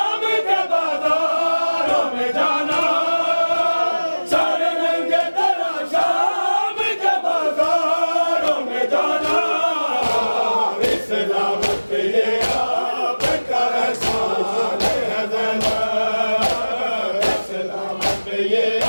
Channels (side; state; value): both; inverted; correlation -1.00